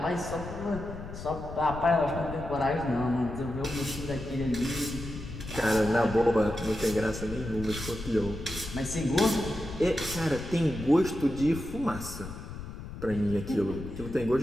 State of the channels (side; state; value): left; noise; rumble, 10 dB below the sound